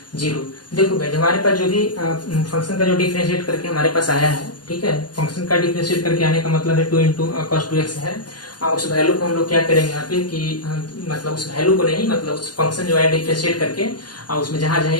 0। देखो भाई हमारे पास जो भी फंक्शन का जो डिफरेंशिएट करके हमारे पास आया है, ठीक है, फंक्शन का डिफरेंशिएट करके आने का मतलब है 2 इंटू cos 2x है। उस वैल्यू को हम लोग क्या करेंगे यहाँ पे कि मतलब उस वैल्यू को नहीं, मतलब उस फंक्शन जो है डिफरेंशिएट करके उसमें जहां जहां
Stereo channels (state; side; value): late; right; 0.70 ms